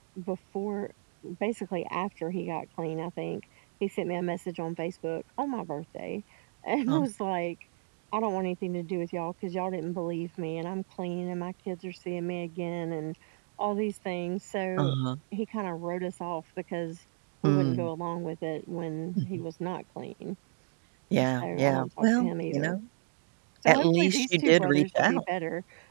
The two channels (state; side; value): silent; left; digital silence